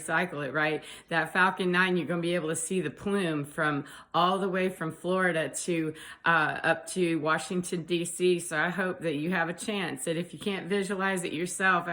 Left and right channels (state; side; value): identical; both; correlation 1.00